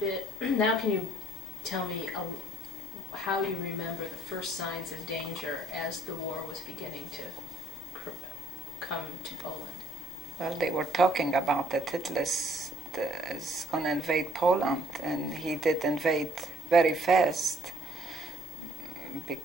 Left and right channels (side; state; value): both; normal; correlation 0.61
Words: now can you tell me how you remember the first signs of danger as the war was beginning to come to Poland? Well, they were talking about that Hitler is going to invade Poland, and he did invade very fast